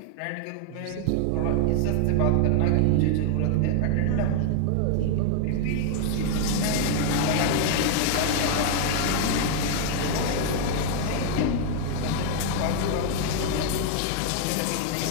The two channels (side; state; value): both; different; correlation 0.00